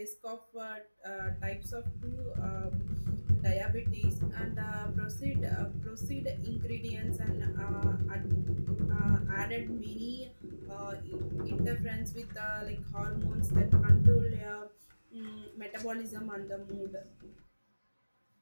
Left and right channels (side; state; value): both; inverted; correlation -1.00